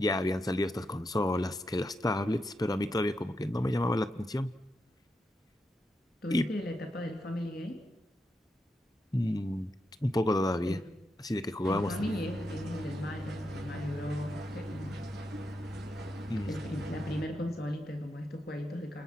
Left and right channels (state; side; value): normal; both; correlation 0.84